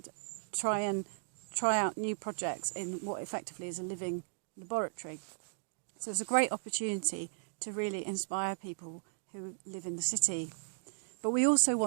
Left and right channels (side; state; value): left; silent; digital silence